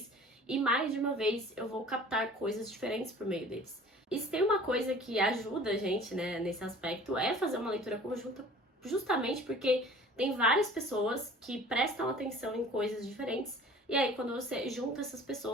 e mais de uma vez eu vou captar coisas diferentes por meio deles. E se tem uma coisa que ajuda a gente, né, nesse aspecto, é fazer uma leitura conjunta, justamente porque tem várias pessoas que prestam atenção em coisas diferentes, e aí quando você junta essas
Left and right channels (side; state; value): both; normal; correlation 0.47